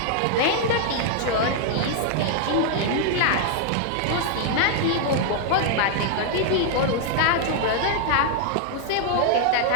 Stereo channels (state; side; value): different; both; correlation 0.00